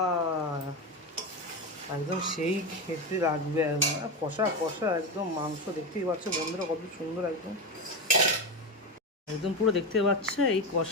একদম সেই খেতে লাগবে একদম কষা কষা একদম মাংস। দেখতেই পাচ্ছ বন্ধুরা কত সুন্দর একদম, একদম পুরো দেখতে পাচ্ছে এই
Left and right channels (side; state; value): both; normal; correlation 0.16